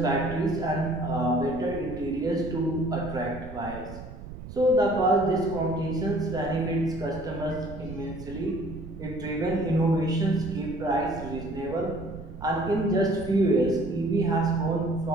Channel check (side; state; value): right; noise; rumble, 12 dB below the sound